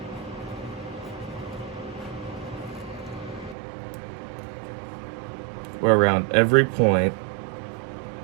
Where around every point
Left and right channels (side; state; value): left; drops out; at 3.6 s